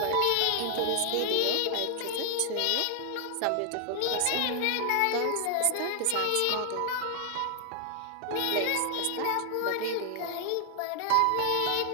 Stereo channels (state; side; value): different; both; correlation 0.00